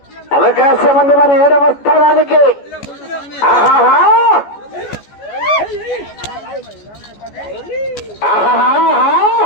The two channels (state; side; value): late; right; 14 ms